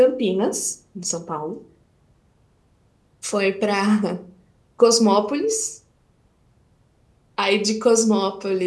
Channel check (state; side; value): identical; both; correlation 1.00